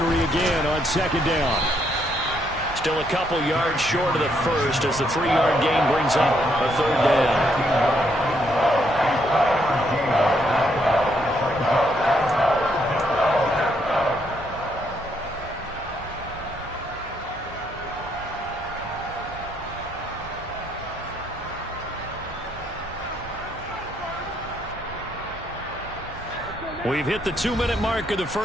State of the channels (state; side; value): noise; right; hum, 20 dB below the sound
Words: again on second down. Still a couple yards short of the first as the 3-yard gain brings up a third down. We've hit the 2-minute mark of the